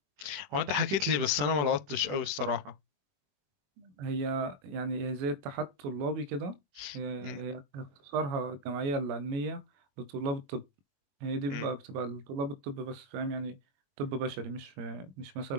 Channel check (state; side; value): late; left; 21 ms